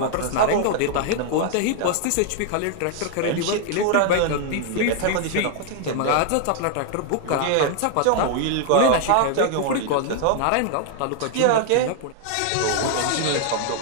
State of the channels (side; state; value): both; different; correlation 0.00